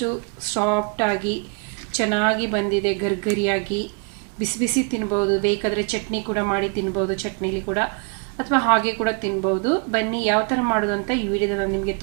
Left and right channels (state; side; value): quieter; left; 35.8 dB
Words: ಸಾಫ್ಟಾಗಿ ಚೆನ್ನಾಗಿ ಬಂದಿದೆ. ಗರ್ಗರಿಯಾಗಿ ಬಿಸಿ ಬಿಸಿ ತಿನ್ಬೋದು. ಬೇಕಾದರೆ ಚಟ್ನಿ ಕೂಡ ಮಾಡಿ ತಿನ್ಬೋದು, ಚಟ್ನಿಲಿ ಕೂಡ, ಅಥವಾ ಹಾಗೆ ಕೂಡ ತಿನ್ಬೋದು. ಬನ್ನಿ ಯಾವ ಥರ ಮಾಡೋದು ಅಂತ ಈ ವಿಡಿಯೋದಲ್ಲಿ ನಾನು ನಿಮಗೆ